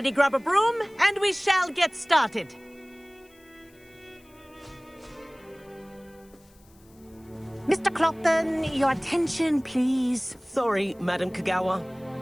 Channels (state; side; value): noise; left; hiss, 30 dB below the sound